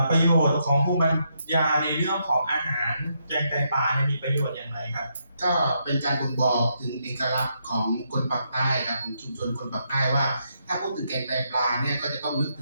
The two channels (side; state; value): both; inverted; correlation -0.78